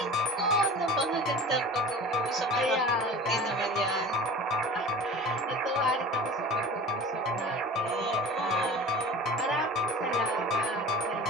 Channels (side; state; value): both; normal; correlation 0.38